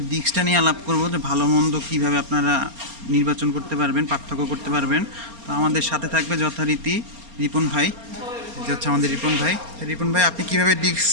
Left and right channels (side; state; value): left; late; 4.3 ms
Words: ডিস্কটা নিয়ে আলাপ করব, যে ভালো মন্দ কীভাবে আপনারা নির্বাচন করতে পারবেন, পার্থক্য করতে পারবেন। তো আমাদের সাথে থাকবে যথারীতি রিপন ভাই, যে হচ্ছে আমাদের রিপন ভাই। রিপন ভাই, আপনি কীভাবে ডিস্ক